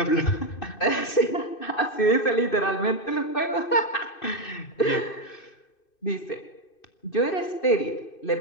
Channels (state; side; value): late; right; 2.6 ms